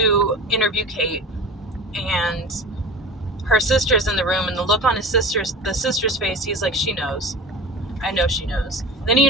interview Kate, and her sister's in the room, and the look on the sister's face, he's like, she knows. I know she knows. Then he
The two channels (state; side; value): normal; both; correlation 0.34